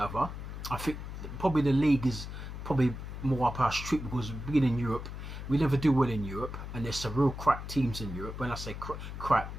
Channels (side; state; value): left; noise; hum, 8 dB below the sound